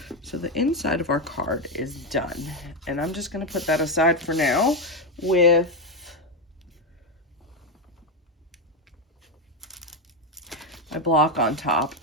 So the inside of our card is done, and I'm just going to put that aside for now with my block on top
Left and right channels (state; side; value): normal; both; correlation 0.08